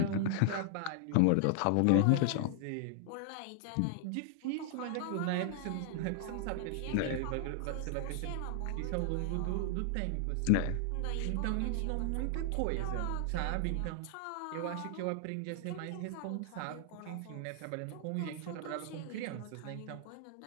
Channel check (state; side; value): different; both; correlation 0.00